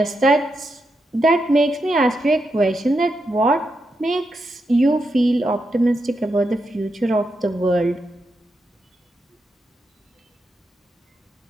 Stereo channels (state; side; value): normal; both; correlation 0.85